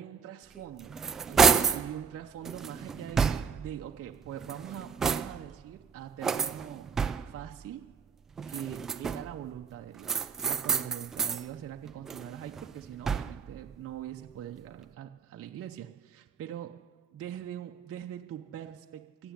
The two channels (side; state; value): left; quieter; 6.3 dB